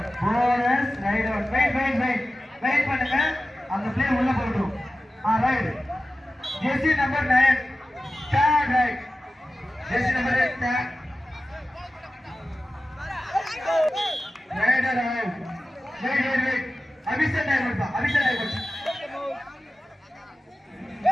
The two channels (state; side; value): normal; both; correlation 0.95